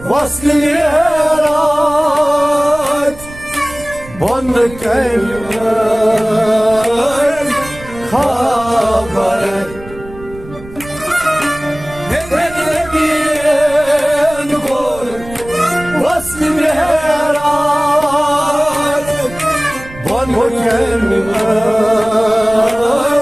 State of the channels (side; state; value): right; noise; rumble, 17 dB below the sound